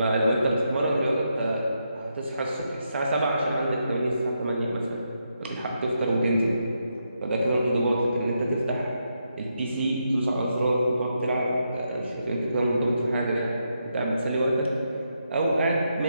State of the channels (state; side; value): inverted; both; correlation -0.82